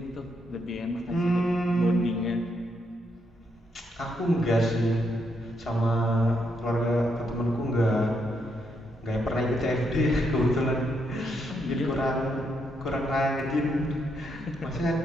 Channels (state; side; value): normal; both; correlation 0.78